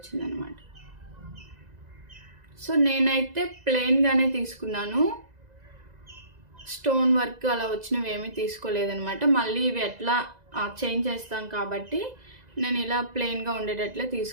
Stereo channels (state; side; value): late; left; 2.0 ms